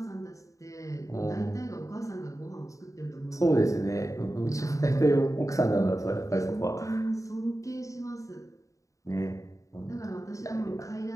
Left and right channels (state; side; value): late; right; 0.16 ms